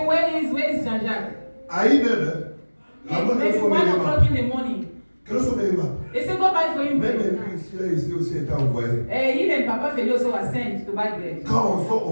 where is Jean-Jacques? à 1h, la And bonne maybe 1 o'clock in the morning. Quel sont mes mains? They say, go buy for him Même bread. lui, ici aussi été envoyé. Even Papa Feli also was sent to buy bread. Quand on sort,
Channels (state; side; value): inverted; both; correlation -1.00